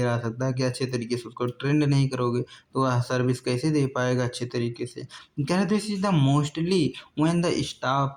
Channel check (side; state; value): both; identical; correlation 1.00